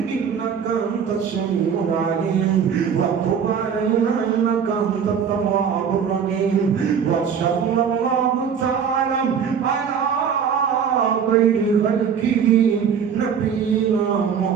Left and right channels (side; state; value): left; quieter; 7.2 dB